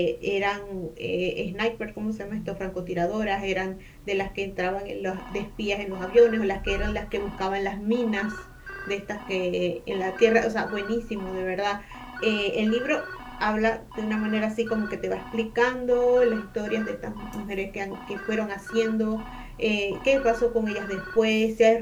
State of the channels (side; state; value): both; identical; correlation 1.00